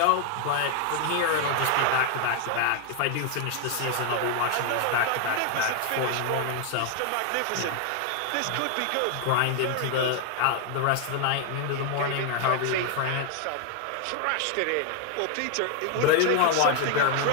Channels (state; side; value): different; both; correlation 0.00